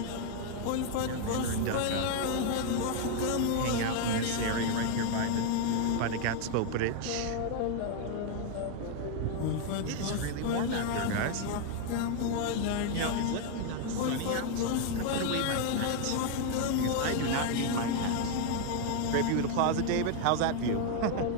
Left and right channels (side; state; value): both; different; correlation 0.01